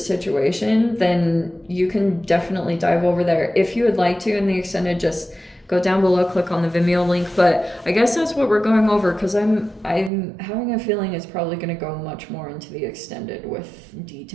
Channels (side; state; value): left; drops out; at 10.1 s